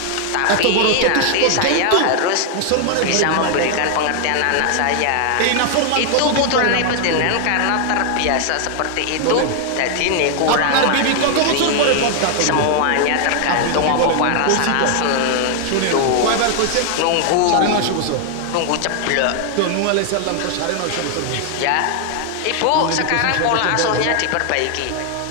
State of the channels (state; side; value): different; both; correlation 0.00